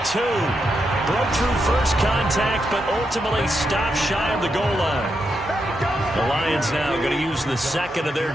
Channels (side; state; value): both; normal; correlation 0.83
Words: 2. broke through first contact, but ultimately stopped shy of the goal line. The Lions now going to use the second of their